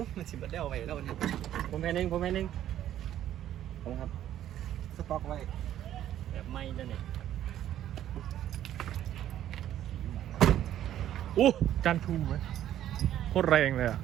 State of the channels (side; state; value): left; quieter; 11.8 dB